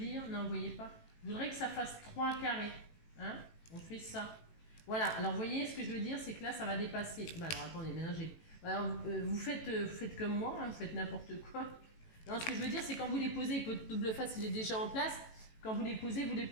Non, vous voyez pas. Je voudrais que ça fasse 3 carrés. Hein? On fait ça. Voilà. Alors, vous voyez ce que je veux dire? C'est que là, ça va dépasser. Bah, alors, attendez. Maintenant, alors, vous faites comme moi. Hein, vous faites n'importe quoi. Non, ce que je veux dire, c'est quand vous les posez, votre double face, il est déjà en place. Quand vous les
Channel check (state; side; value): late; right; 18 ms